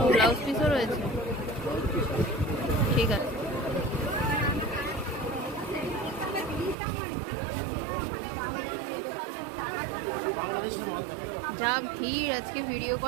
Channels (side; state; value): left; drops out; at 6.8 s